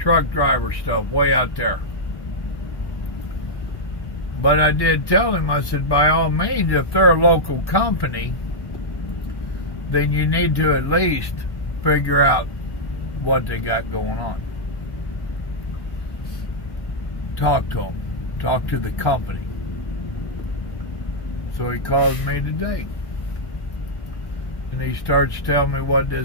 driver stuff way out there. But I did tell him, I said, by all means, if they're a local company, then you need to at least figure out what they got going on. Talk to them. Talk to the company. So he calls me today. And he starts telling me what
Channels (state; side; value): late; right; 1.1 ms